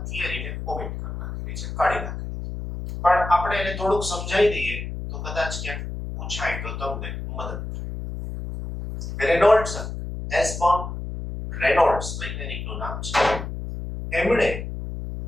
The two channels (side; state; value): left; noise; hum, 7 dB below the sound